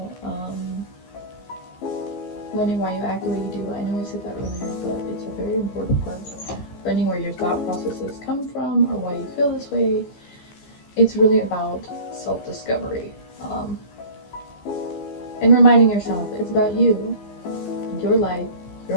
Learning why you act the way you do. I know I said that earlier, but it's a very important part. Learning where your thought processes come from or why you feel this way. It's really about self-discovery. And reminding yourself, it's about you, your life,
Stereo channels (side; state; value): right; late; 15 ms